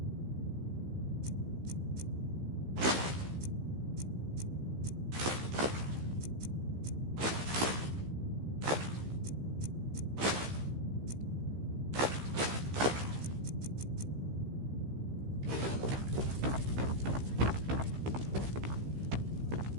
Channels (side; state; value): left; late; 15 ms